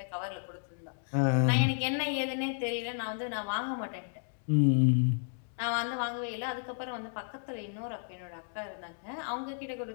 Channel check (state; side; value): silent; right; digital silence